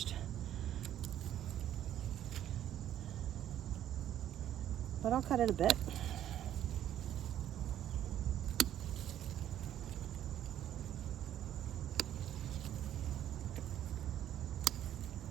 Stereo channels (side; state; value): left; quieter; 11.3 dB